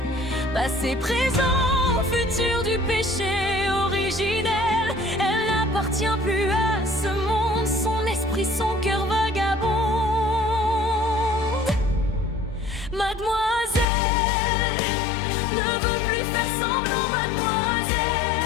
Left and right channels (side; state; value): right; drops out; at 13.9 s